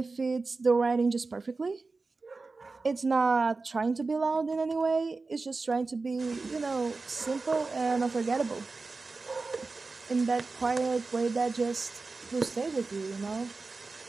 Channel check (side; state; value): left; quieter; 3.9 dB